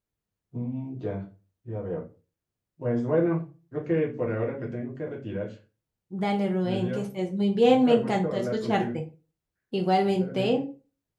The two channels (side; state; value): both; identical; correlation 1.00